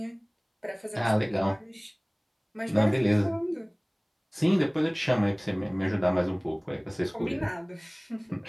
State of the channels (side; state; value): both; identical; correlation 1.00